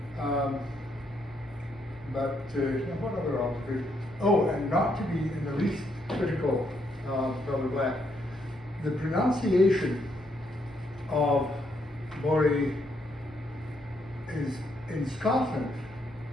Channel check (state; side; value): normal; both; correlation 0.75